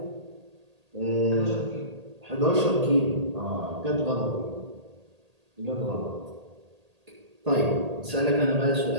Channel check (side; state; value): left; late; 1.8 ms